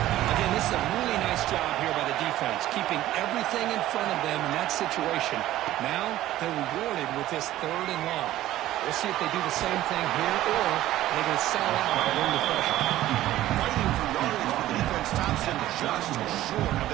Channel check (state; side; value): quieter; left; 14.5 dB